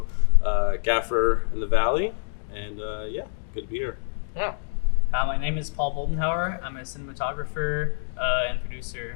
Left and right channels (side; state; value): right; silent; 61 dB below the other